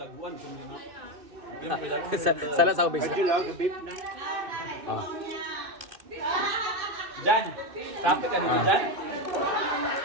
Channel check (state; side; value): late; left; 2.6 ms